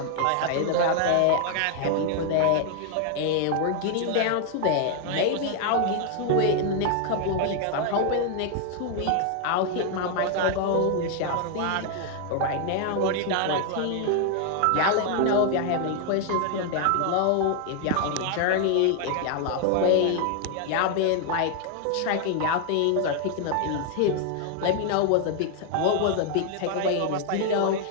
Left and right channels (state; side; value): different; both; correlation 0.00